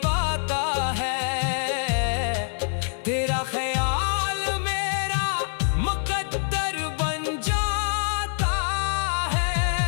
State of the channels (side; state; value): right; silent; 62 dB below the other